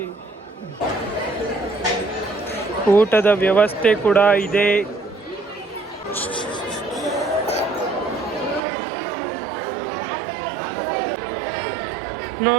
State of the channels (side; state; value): left; drops out; at 8.6 s